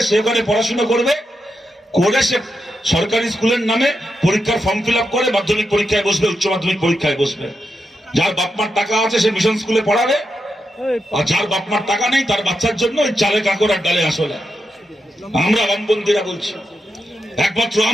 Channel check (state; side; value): normal; both; correlation 0.86